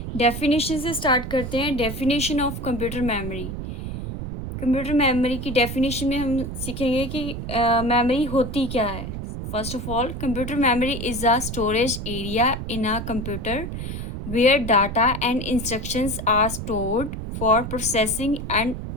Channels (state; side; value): noise; right; rumble, 6 dB below the sound